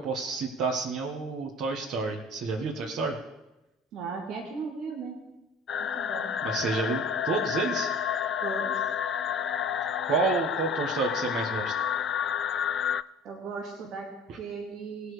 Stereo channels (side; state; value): both; normal; correlation 0.43